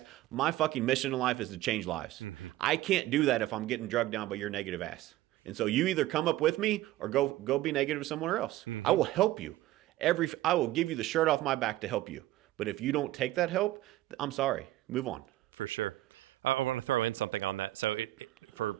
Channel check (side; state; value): left; quieter; 15.9 dB